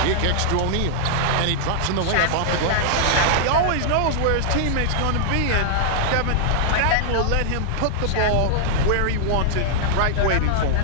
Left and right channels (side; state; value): both; different; correlation -0.01